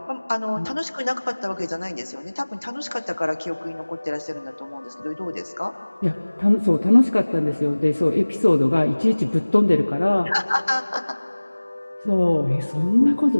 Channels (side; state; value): both; inverted; correlation -1.00